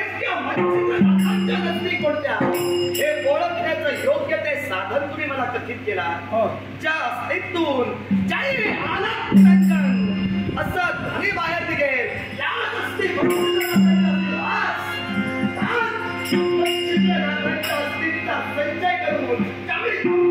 मच्छिंद्रनाथांच्या नसती कोणत्या हे ओळखण्याचं योग्य ते साधन तुम्ही मला कथित केला. ज्या अस्तित्वून जय आनंद निरंजन असं ध्वनी बाहेर निघेल याच असती अस्तित्वाचा संचय करून त्यावेळी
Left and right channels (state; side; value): identical; both; correlation 1.00